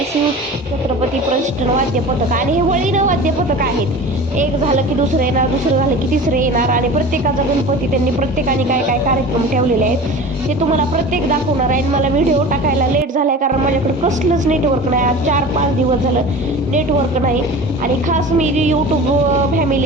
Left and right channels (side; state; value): both; normal; correlation 0.36